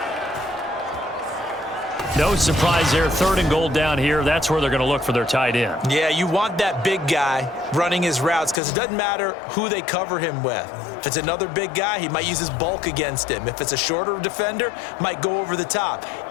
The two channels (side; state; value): right; drops out; at 8.6 s